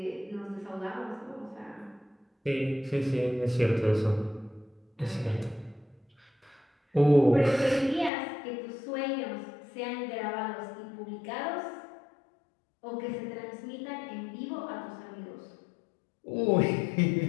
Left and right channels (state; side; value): drops out; right; at 8.1 s